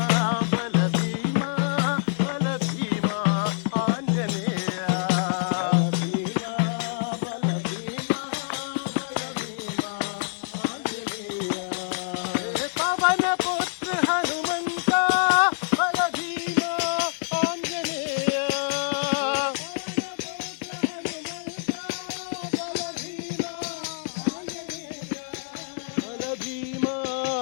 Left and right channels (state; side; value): silent; right; digital silence